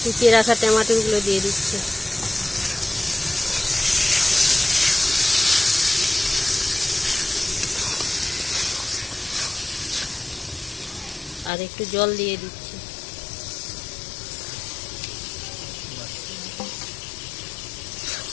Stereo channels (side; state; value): right; drops out; at 11.5 s